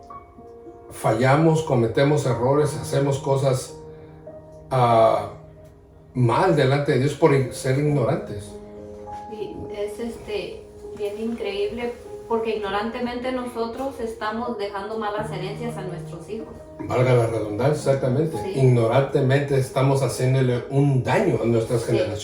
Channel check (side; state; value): both; identical; correlation 1.00